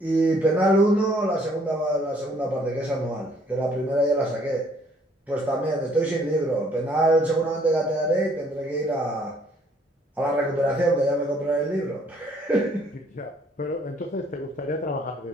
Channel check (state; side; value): normal; both; correlation 0.63